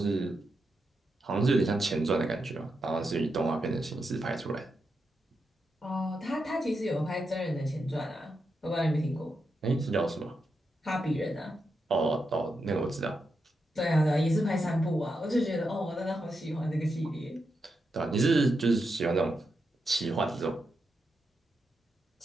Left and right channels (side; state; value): both; normal; correlation 0.86